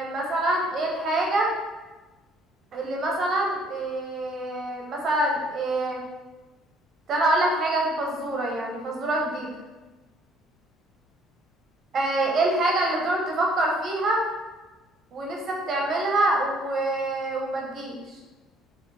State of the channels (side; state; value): both; normal; correlation 0.61